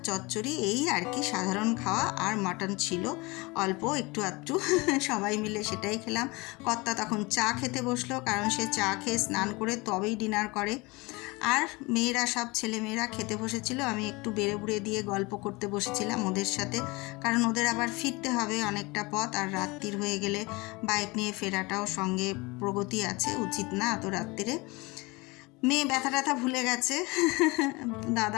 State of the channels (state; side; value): quieter; right; 24.8 dB